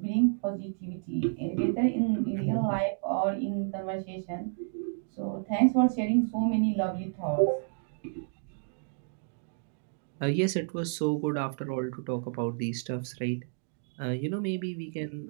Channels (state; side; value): silent; left; digital silence